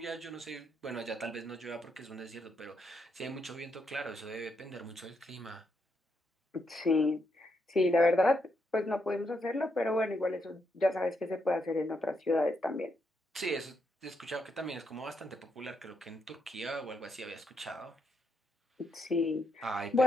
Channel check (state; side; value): normal; both; correlation 0.80